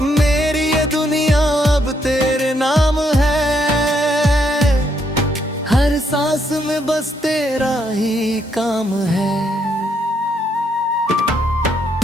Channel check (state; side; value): normal; both; correlation 0.74